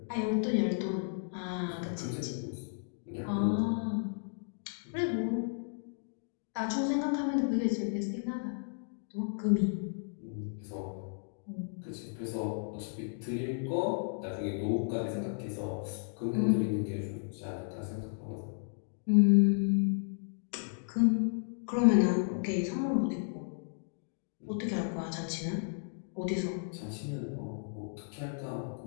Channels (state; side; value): silent; right; digital silence